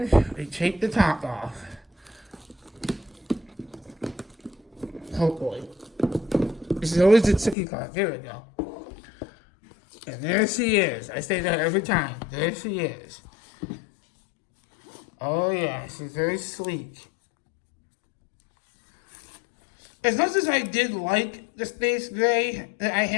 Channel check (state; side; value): drops out; right; at 7.6 s